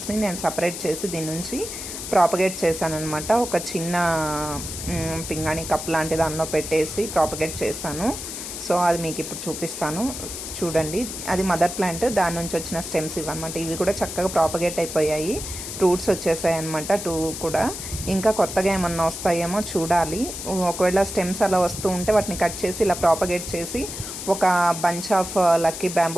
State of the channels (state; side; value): noise; left; hiss, 8 dB below the sound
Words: నేను సపరేట్ చేసి దీని నుంచి ప్రాపగేట్ చేశానమాట. ఒక చిన్న పింగాణి కప్ లాంటి దానిలో పెట్టేసి ప్రాపగేట్ చేశాను. సో అది మీకు ఇప్పుడు చూపిస్తాను, చూడండి. అది మదర్ ప్లాంట్, దాని నుంచి వచ్చిన స్టెమ్స్ ఇవన్నమాట. ఇవి కూడా చక్కగా ప్రాపగేట్ అయిపోయాయి, రూట్స్ వచ్చేసాయి అనమాట 2 కూడా. ఇంకా కొత్తగా ఏమన్నా వస్తాయేమో చూడాలి. ఒకవేళ స్టెమ్స్ అలా వస్తూ ఉంటే వాటిని కట్ చేసి ఇలా ప్రాపగేట్ చేసి ఒక బంచ్ ఆఫ్ లక్కీ